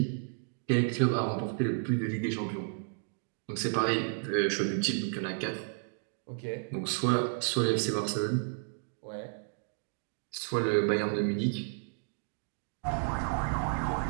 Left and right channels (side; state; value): left; silent; digital silence